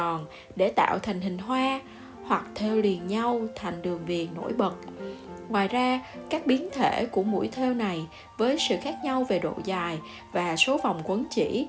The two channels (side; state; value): both; identical; correlation 1.00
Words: để tạo thành hình hoa, hoặc thêu liền nhau thành đường viền nổi bật. Ngoài ra, các biến thể của mũi thêu này với sự khác nhau về độ dài và số vòng quấn chỉ